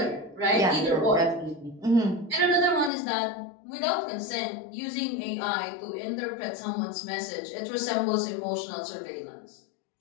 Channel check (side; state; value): right; drops out; at 2.9 s